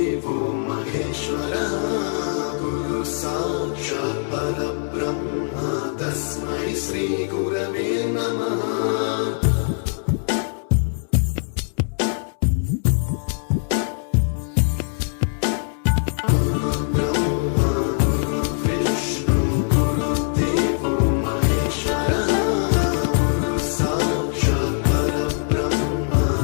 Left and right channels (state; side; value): silent; right; 64 dB below the other